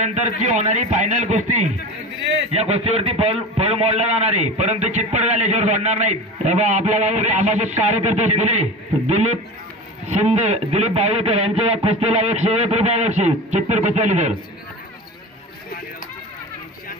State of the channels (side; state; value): both; normal; correlation 0.31